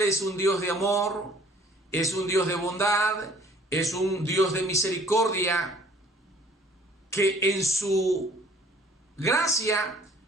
es un Dios de amor, es un Dios de bondad, es un Dios de misericordia, que en su gracia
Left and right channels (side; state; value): both; normal; correlation 0.55